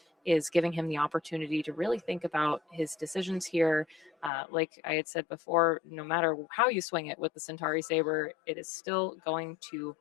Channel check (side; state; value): right; drops out; at 4.3 s